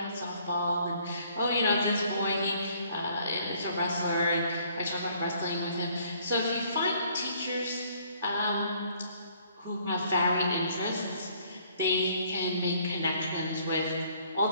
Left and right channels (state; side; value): inverted; both; correlation -0.62